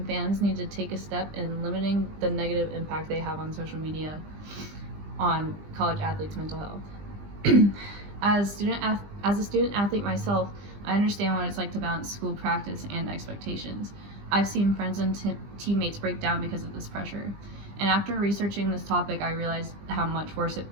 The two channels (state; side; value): late; left; 20 ms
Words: fans need to take a step in limiting the negative impact they have on social media on college athletes' mental health. As a student athlete myself, I understand what it's like to balance school practice and expectations. I've seen friends and teammates break down because of this pressure. And after researching this topic, I realized how much worse